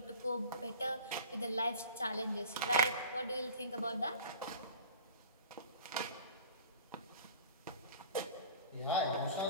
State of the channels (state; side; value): inverted; both; correlation -0.42